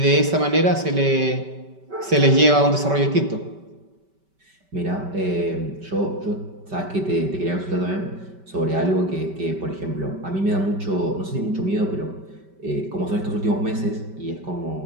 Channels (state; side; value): late; left; 5.2 ms